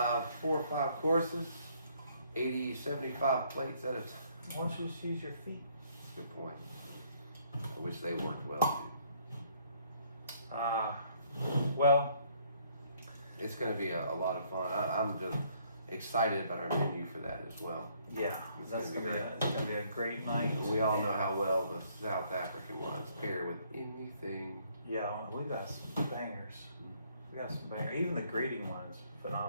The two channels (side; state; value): both; inverted; correlation -0.66